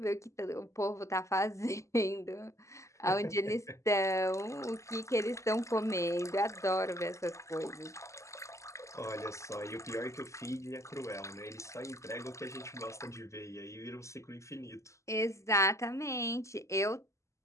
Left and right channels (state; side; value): late; right; 0.14 ms